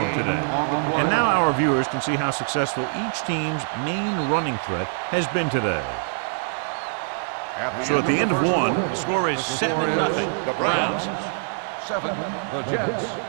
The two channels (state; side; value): silent; left; 63 dB below the other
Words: today. And now our viewers can see how successful each team's main running threat has been today. So at the end of one, the score is 7-0. The Browns. 7. The Jets.